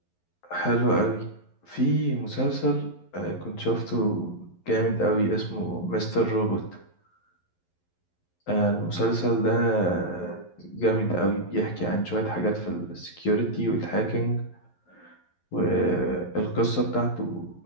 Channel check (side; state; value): right; late; 11 ms